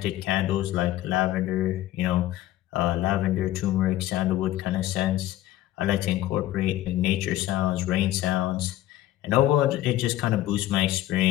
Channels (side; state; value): right; quieter; 14.7 dB